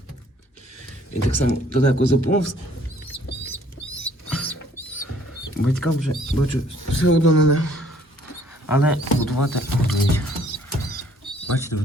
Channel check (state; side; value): normal; both; correlation 0.61